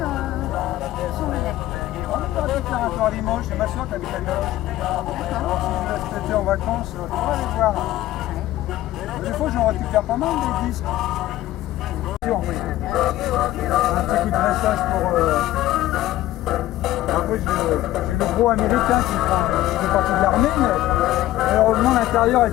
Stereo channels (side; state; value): right; quieter; 15.2 dB